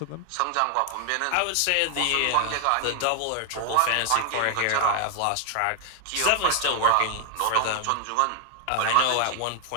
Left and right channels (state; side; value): different; both; correlation 0.00